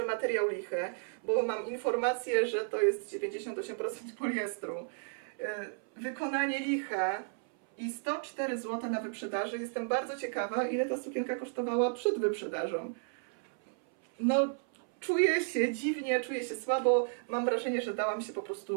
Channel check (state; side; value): silent; left; 56 dB below the other